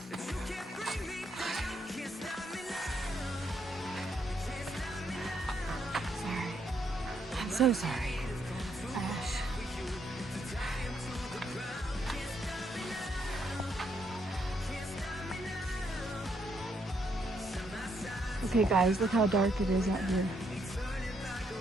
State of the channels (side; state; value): both; normal; correlation 0.75